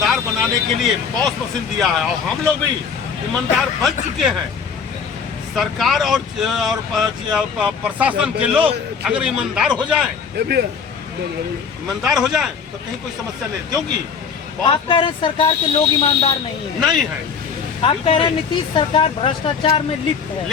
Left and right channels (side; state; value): right; quieter; 6.2 dB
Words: बनाने के लिए पॉस मशीन दिया है और हम लोग भी ईमानदार बन चुके हैं। सरकार और प्रशासन के लोग अगर ईमानदार हो जाएं, ईमानदार हो जाएं तो कहीं कोई समस्या नहीं, क्योंकि आप कह रहे हैं सरकार के लोग ईमानदार नहीं है, नहीं है। आप कह रहे हैं नीतीश सरकार भ्रष्टाचार में लिप्त है,